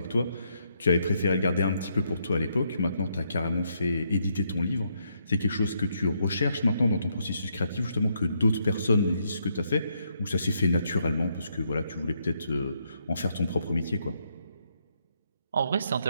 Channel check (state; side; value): inverted; both; correlation -0.76